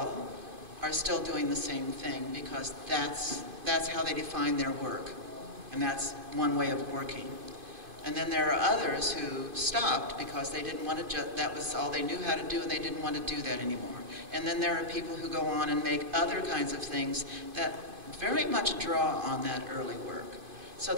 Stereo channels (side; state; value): left; late; 2.5 ms